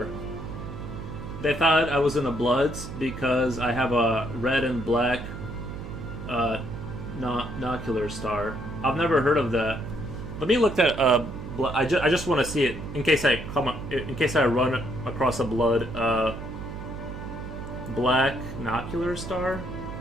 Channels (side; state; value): right; noise; hum, 9 dB below the sound